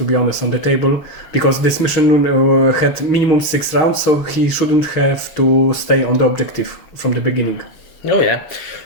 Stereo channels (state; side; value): late; right; 6.8 ms